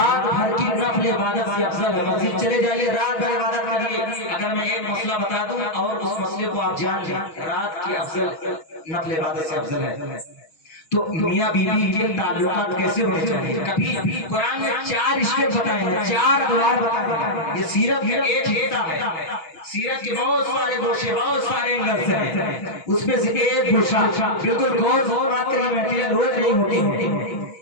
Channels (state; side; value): late; right; 6.2 ms